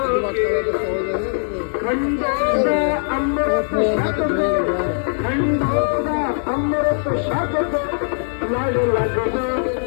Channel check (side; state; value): right; silent; digital silence